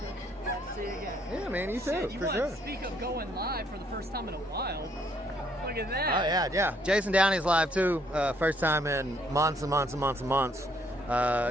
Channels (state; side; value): normal; both; correlation 0.68